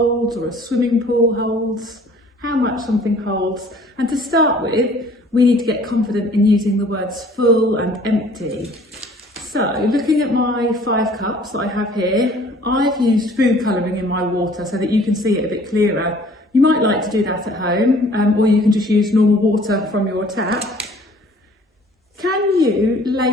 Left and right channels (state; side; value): normal; both; correlation 0.53